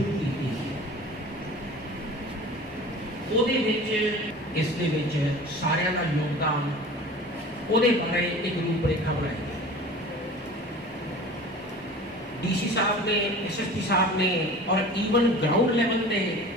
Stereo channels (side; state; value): both; normal; correlation 0.40